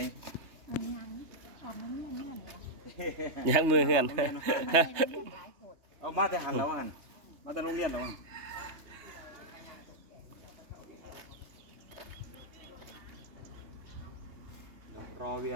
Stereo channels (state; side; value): late; left; 3.2 ms